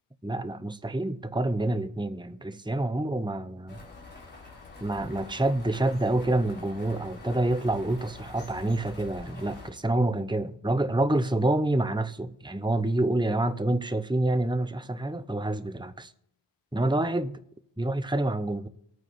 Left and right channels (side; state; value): both; normal; correlation 0.83